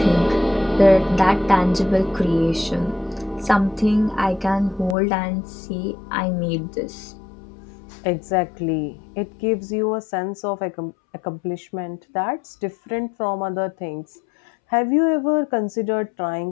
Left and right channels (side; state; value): right; drops out; at 5.0 s